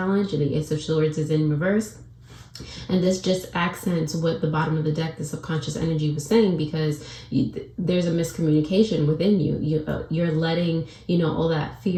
and the Ace of Swords is in reverse. And this just accents what the bottom of the deck, the subconscious energy, was saying, because there's a miscommunication within you. You're letting, you know, all that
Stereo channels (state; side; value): identical; both; correlation 1.00